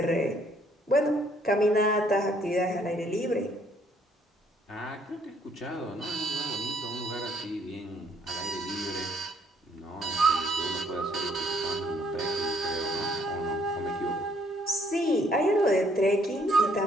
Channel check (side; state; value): both; normal; correlation 0.65